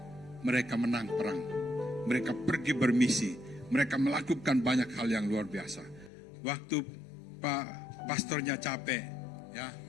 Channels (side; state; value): right; drops out; at 6.1 s